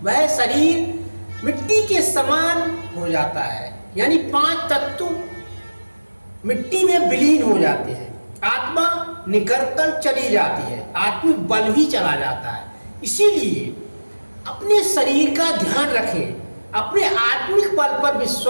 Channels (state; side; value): inverted; both; correlation -1.00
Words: वह शरीर मिट्टी के समान हो जाता है। यानी 5 तत्व मिट्टी में विलीन हो जाते हैं। आत्मा निकलकर चली जाती है, आत्मिक बल भी चला जाता है। इसीलिए अपने शरीर का ध्यान रखें, अपने आत्मिक बल पर